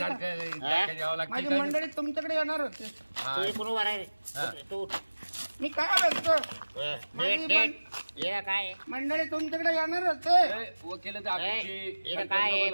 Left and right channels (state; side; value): inverted; both; correlation -1.00